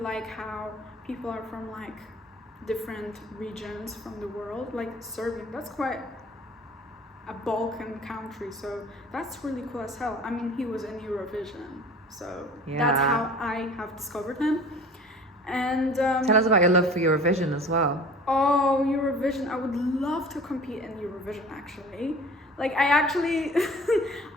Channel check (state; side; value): normal; both; correlation 0.44